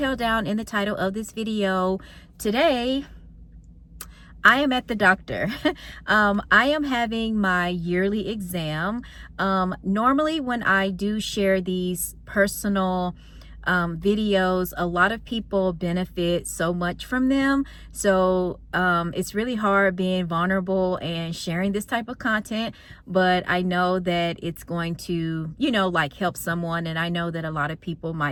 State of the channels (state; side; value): identical; both; correlation 1.00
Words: down in the title of this video, today I am at the doctor. I am having my yearly exam. Normally when I do share these personal videos, a lot of people benefit so much from them. So it's really hard being vulnerable and sharing this type of content, but I know that it's going to, like help someone. And I know that a lot of people